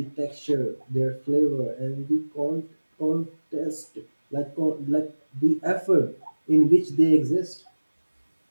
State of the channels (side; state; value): both; inverted; correlation -1.00